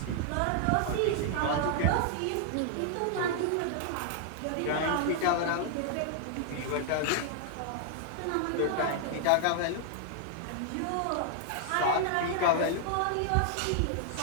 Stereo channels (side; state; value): both; different; correlation 0.00